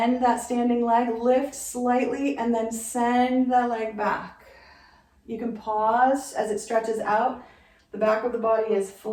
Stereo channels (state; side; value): identical; both; correlation 1.00